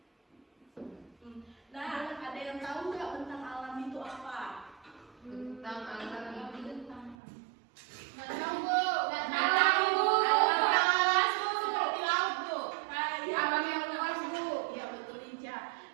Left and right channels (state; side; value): drops out; left; at 7.2 s